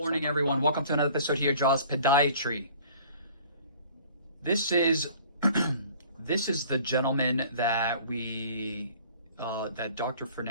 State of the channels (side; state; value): both; inverted; correlation -0.50